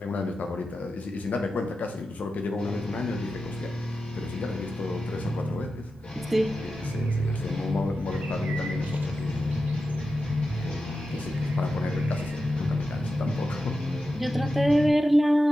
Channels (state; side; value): normal; both; correlation 0.91